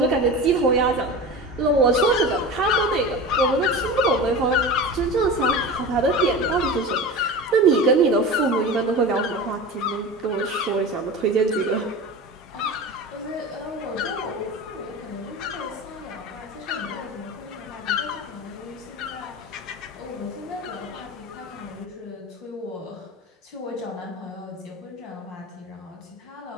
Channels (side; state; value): both; normal; correlation 0.31